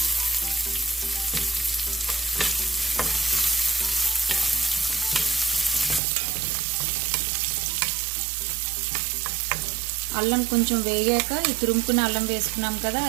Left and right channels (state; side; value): drops out; left; at 6.0 s